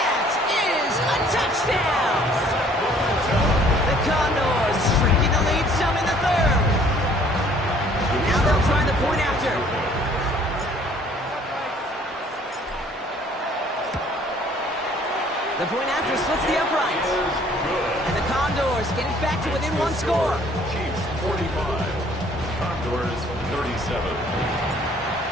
is a touchdown! The Condors shrinking the lead some in the 3rd. Now they'll try the point after. The point after splits the uprights. And the Condors get it back to within 1 score. Chiefs 45. Condors 37.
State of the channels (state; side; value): normal; both; correlation 0.57